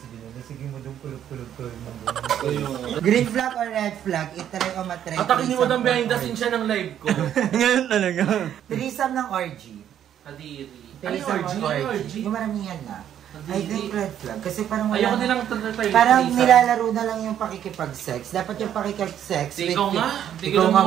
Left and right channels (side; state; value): left; quieter; 10.2 dB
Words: Jonel. Sige mo doon, kulog-kulog ko. Green flag or red flag? Itry o matry. Atakin ni Madam behind the scene siya ng live ko. Ngayon talaga. Threesome ng orgy. Kadiri. Threesome ng orgy. Yung maramihan na. I think red flag. Kasi parang Ayoko wala. nilang try. Parang nilalaro na lang yung pakikipag-sex. Dapat yung pakikipag-sex. Ikaw nga. Ikaw nga,